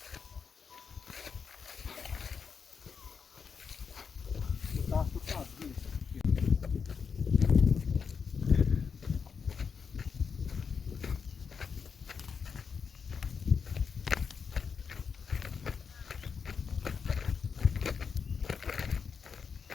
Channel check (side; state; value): right; quieter; 6.0 dB